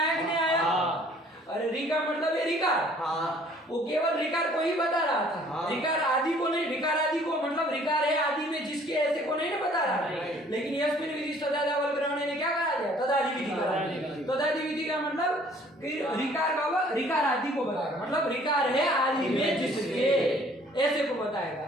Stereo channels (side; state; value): both; normal; correlation 0.57